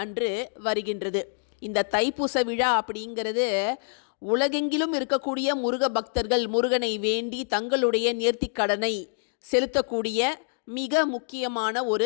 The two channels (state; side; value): silent; right; digital silence